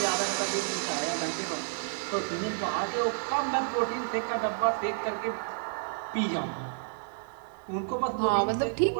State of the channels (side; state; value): left; silent; digital silence